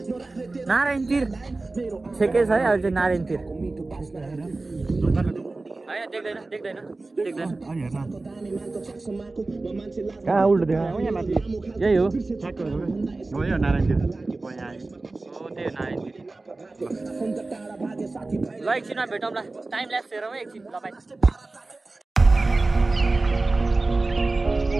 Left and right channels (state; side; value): quieter; left; 3.3 dB